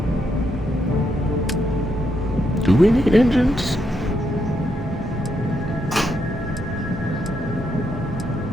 do we need engines?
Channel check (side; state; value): both; normal; correlation 0.79